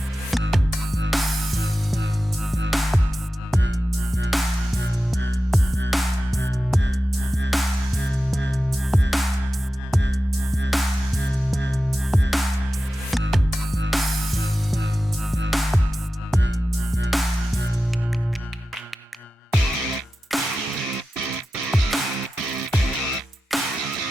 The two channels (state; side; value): normal; both; correlation 0.93